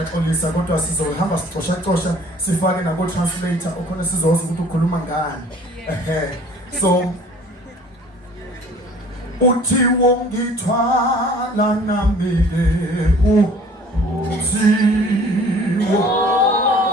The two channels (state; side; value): normal; both; correlation 0.51